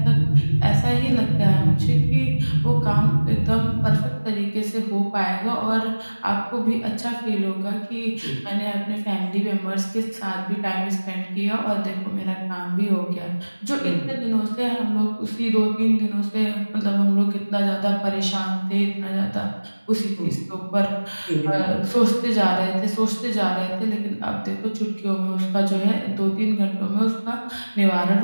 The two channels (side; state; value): both; inverted; correlation -1.00